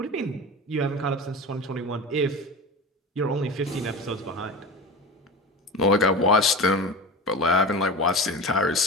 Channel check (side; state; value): both; normal; correlation 0.30